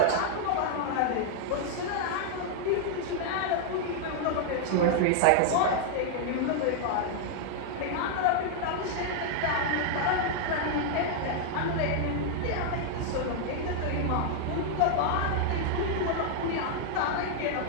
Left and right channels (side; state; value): both; different; correlation 0.00